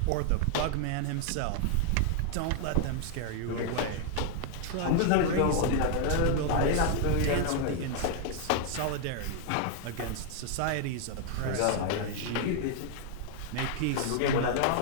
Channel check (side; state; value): both; different; correlation 0.00